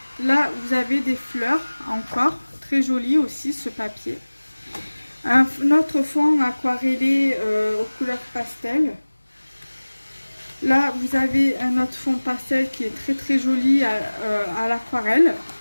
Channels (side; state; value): both; inverted; correlation -1.00